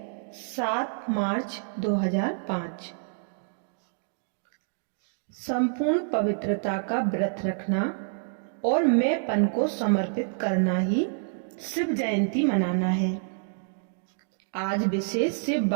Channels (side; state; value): left; silent; digital silence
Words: 7 मार्च 2005। संपूर्ण पवित्रता का व्रत रखना और मैंपन को समर्पित करना ही शिव जयंती मनाना है। आज विशेष शिव